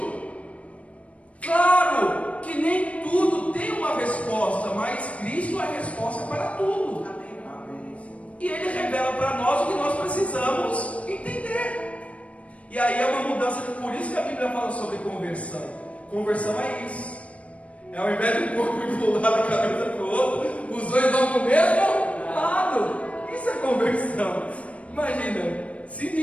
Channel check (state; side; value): late; right; 0.064 ms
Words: Claro que nem tudo tem uma resposta, mas Cristo é a resposta para tudo. E Ele revela para nós o que nós precisamos entender. E aí é uma mudança, por isso que a Bíblia fala sobre conversão. Conversão é isso. É ao invés de um corpo ir para um lado, a cabeça para o outro, os dois vão para o mesmo lado. Isso é conversão. Imagina,